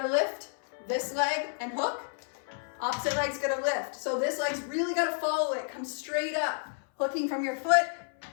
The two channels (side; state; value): right; silent; 57 dB below the other